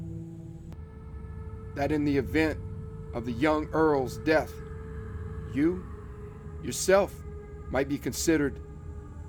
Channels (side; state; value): both; identical; correlation 1.00